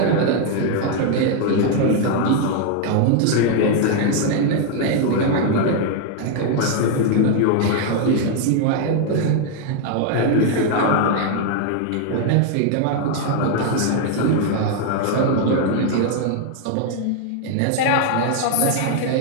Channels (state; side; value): different; both; correlation 0.00